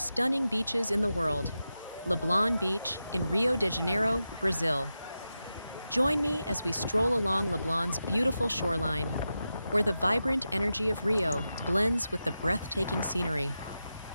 beaches in the world, Leblon Beach in Rio de Janeiro, Brazil. Join me as we stroll along Leblon's beautiful shoreline, where the vibrant energy of Rio blends with the breathtaking scenery.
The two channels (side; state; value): both; inverted; correlation -0.91